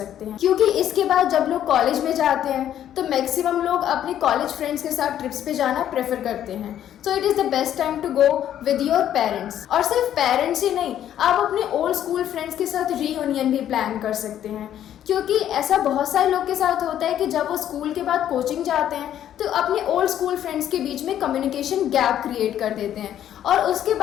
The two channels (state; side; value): quieter; right; 10.9 dB